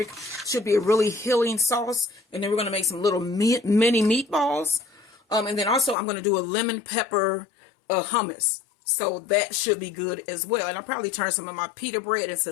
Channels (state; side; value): drops out; right; at 6.0 s